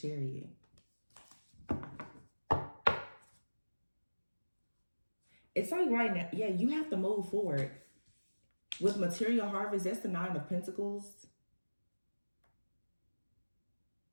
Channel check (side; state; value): both; inverted; correlation -1.00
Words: It's like right now, yeah, you have to move forward. With material harvest, that's the 9 of Pentacles.